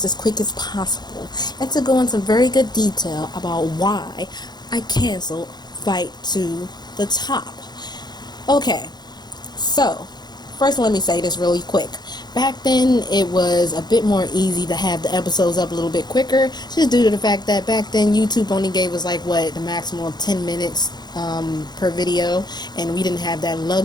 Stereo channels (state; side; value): late; right; 0.20 ms